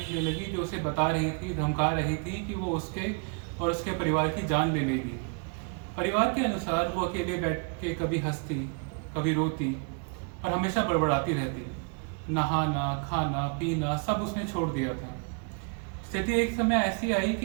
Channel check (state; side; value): quieter; left; 37.5 dB